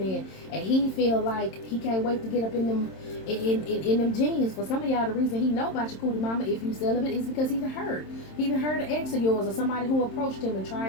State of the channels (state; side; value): late; right; 27 ms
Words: and he feel like he can't wait to get up in them them jeans. For some of y'all, the reason he know about your cootie mama, if you celibate, is because he heard an ex of yours, or somebody who approached him and